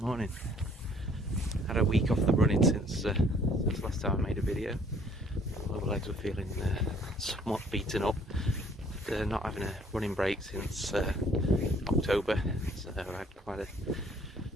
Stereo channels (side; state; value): both; normal; correlation 0.59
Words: Morning. Had a week off the running since last time I made a video. My legs were feeling somewhat beaten up after not having a running break since October. So I had quite a